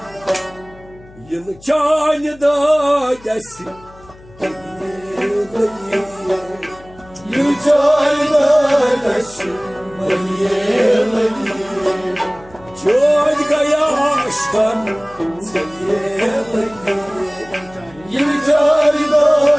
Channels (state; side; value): noise; left; hum, 23 dB below the sound